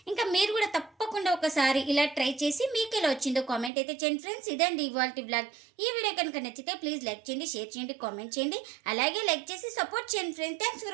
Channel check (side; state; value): left; drops out; at 3.7 s